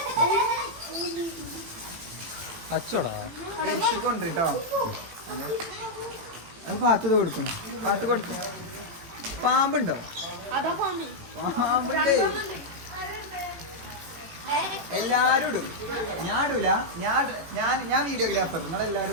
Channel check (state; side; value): late; left; 18 ms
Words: അച്ചോടാ കൊണ്ടിട്ടോ അത് പാത്ത് കൊടുക്കണം പാത്ത് കൊടുക്കണം പാമ്പുണ്ടോ പാമ്പുണ്ടേ എല്ലാരും ഇടും ഞാൻ ഇടൂല ഞാൻ വീഡിയോഗ്രാഫർ